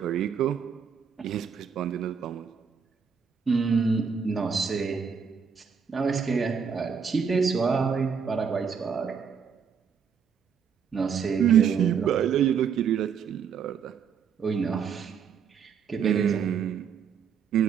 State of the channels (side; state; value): left; quieter; 6.7 dB